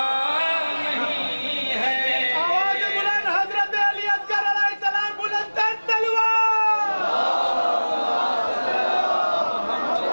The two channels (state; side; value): inverted; both; correlation -1.00